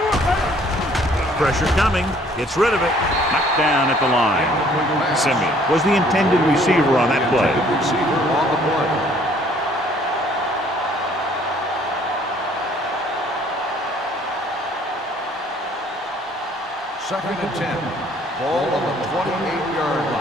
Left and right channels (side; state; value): both; normal; correlation 0.59